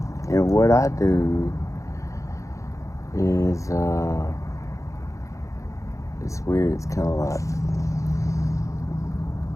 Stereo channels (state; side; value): late; right; 0.15 ms